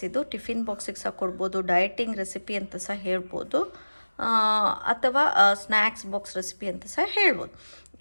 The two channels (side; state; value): both; inverted; correlation -1.00